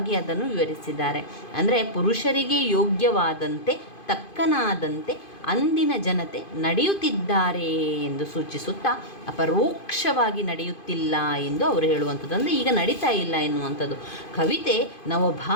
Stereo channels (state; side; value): late; right; 2.5 ms